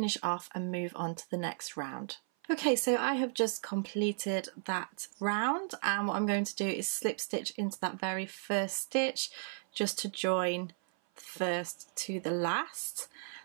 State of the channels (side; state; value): left; silent; 55 dB below the other